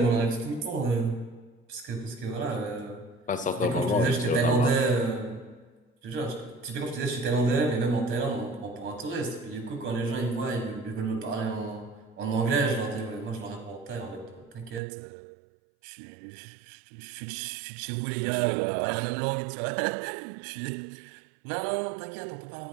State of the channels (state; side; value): drops out; left; at 14.8 s